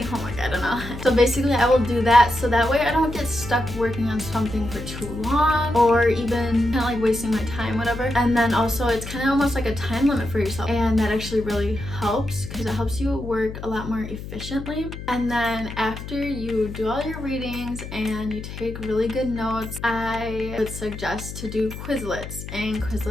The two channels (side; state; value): left; noise; hum, 10 dB below the sound